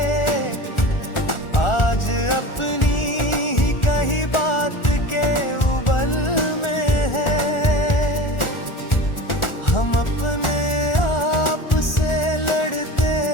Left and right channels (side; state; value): right; late; 1.4 ms